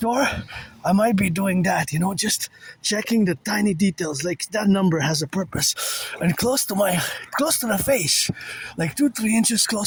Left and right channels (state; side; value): identical; both; correlation 1.00